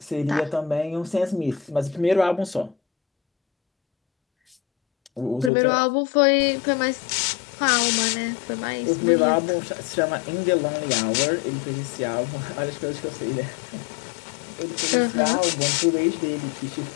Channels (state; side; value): drops out; right; at 5.5 s